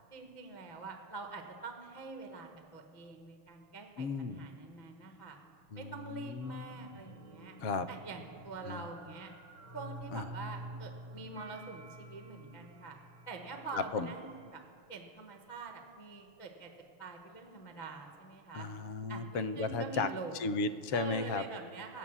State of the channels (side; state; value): right; late; 7.2 ms